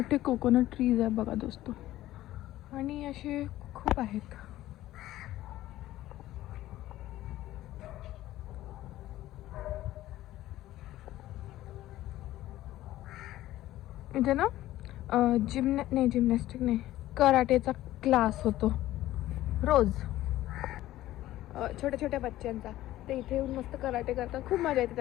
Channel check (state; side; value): quieter; right; 14.9 dB